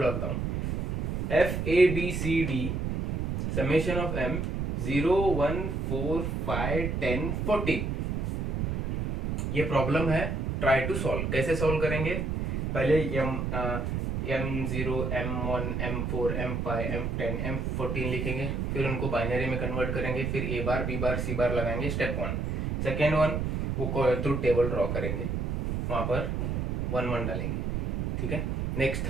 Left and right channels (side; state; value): right; noise; rumble, 1 dB below the sound